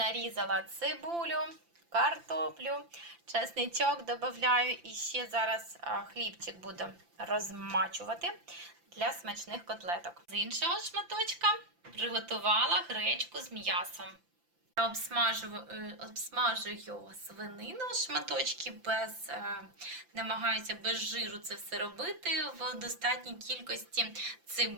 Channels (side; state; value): left; late; 5.8 ms